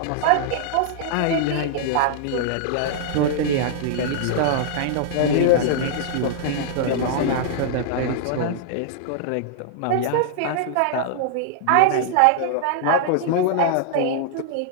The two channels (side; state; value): both; different; correlation -0.01